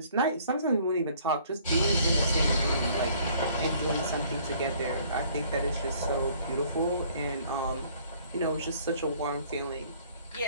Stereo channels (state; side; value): inverted; both; correlation -0.58